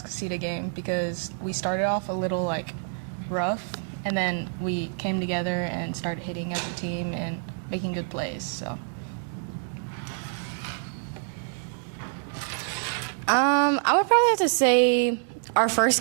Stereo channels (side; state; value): left; silent; 60 dB below the other